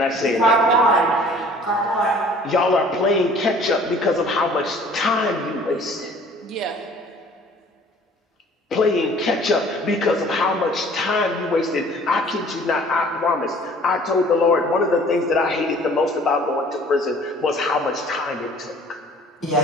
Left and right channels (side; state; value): both; normal; correlation 0.52